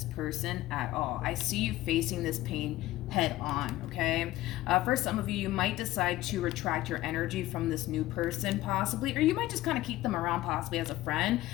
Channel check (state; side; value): quieter; right; 16.3 dB